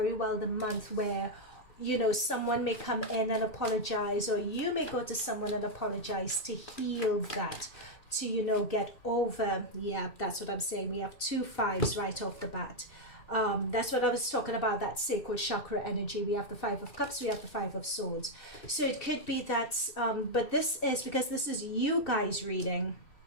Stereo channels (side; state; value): right; late; 2.6 ms